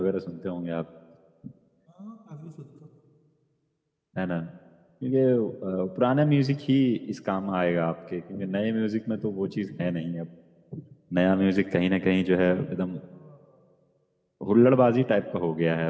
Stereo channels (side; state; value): both; identical; correlation 1.00